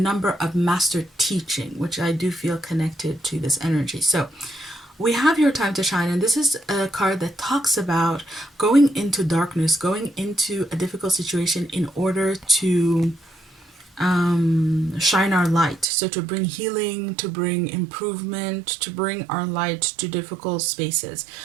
of master teaching, which I do feel connected to this energy. So we have your time to shine. And this is a card that talks about going into darkness, going into a difficult situation in order to shine our light. So to bring healing, to bring improvement, to bring our light to difficult spaces.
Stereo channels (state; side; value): drops out; left; at 15.9 s